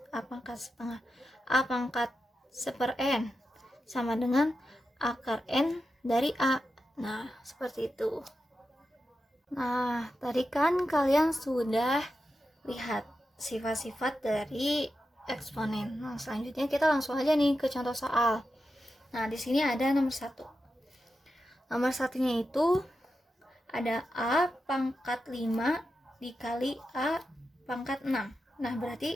A pangkat setengah. A pangkat 1/n sama dengan akar n dari A. Nah, seperti itu. Nah, tadi kan kalian sudah lihat sifat-sifat dari eksponen. Nah, selanjutnya kita langsung aja nih ke contoh soal. Nah, di sini ada nomor 1. Nomor satunya itu ada A pangkat 5 dikali A pangkat 6. Nah,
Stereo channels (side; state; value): both; normal; correlation 0.90